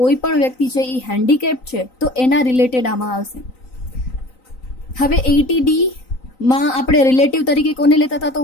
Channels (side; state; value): right; late; 3.9 ms